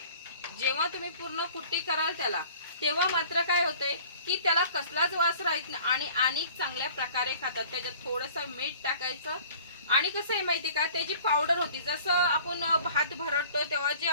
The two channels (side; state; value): both; inverted; correlation -0.49